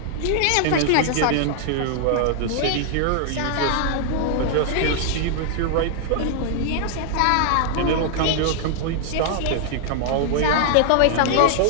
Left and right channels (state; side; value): different; both; correlation -0.01